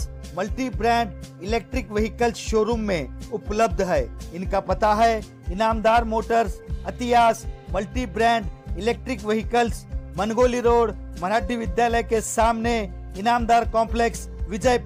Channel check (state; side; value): identical; both; correlation 1.00